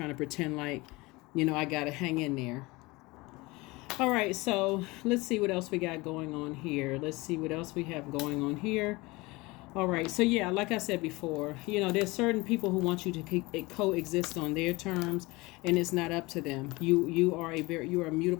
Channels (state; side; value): quieter; right; 23.0 dB